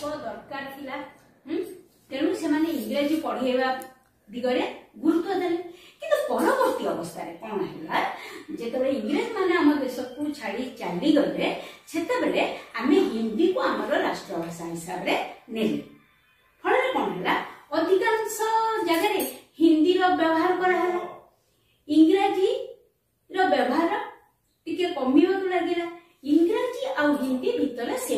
दरकार थिला तेणु से माने इंग्राजी पढ़ेवा दिगरे गुरुत्व देले किंतु परवर्ती अवस्था रे कोन हैला जेतबे इंग्रेज माने हम देश को छाड़ी चली गले सेतेबेले आमे हिंदी को हमर राष्ट्र भाषा हिसाब रे नेले फळे कोन हैला अधिकांश जगह रे हिंदी रो व्यवहार करा हैला इंग्राजी रो व्यवहार टिके कमियो लागिला इंग्राजी आ हिंदी भितर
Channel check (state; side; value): identical; both; correlation 1.00